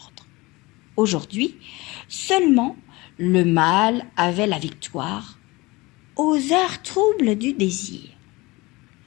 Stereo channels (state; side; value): quieter; right; 22.5 dB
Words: Aujourd'hui, seulement, le mal avait la victoire aux heures troubles du désir.